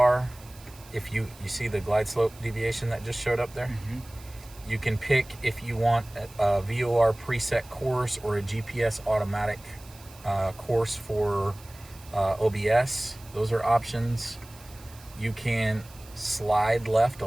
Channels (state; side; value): noise; right; hiss, 22 dB below the sound